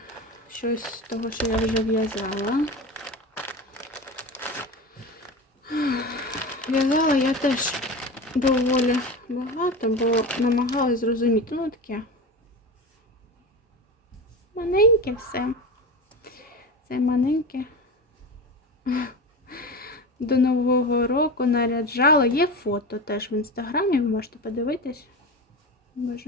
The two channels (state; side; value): normal; both; correlation 0.26